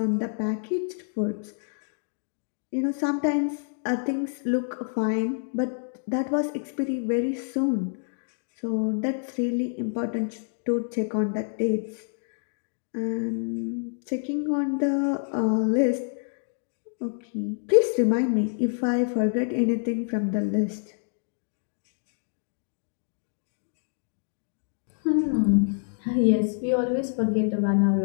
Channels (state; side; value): silent; right; digital silence